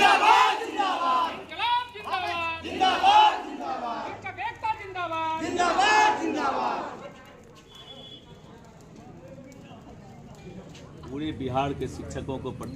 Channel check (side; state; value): both; identical; correlation 1.00